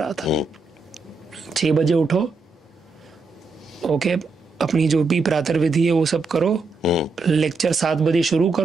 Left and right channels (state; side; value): quieter; left; 3.9 dB